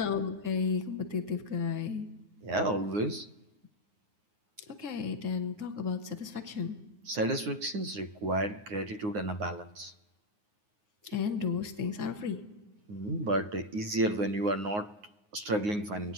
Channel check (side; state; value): left; late; 9.6 ms